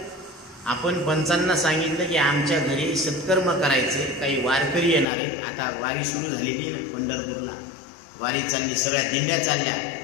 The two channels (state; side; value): drops out; right; at 5.1 s